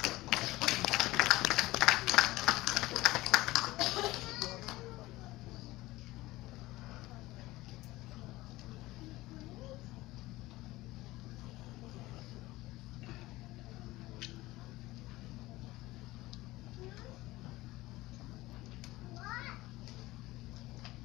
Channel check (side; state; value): right; quieter; 18.8 dB